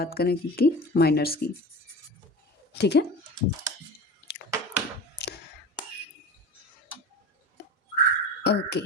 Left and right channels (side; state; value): both; normal; correlation 0.33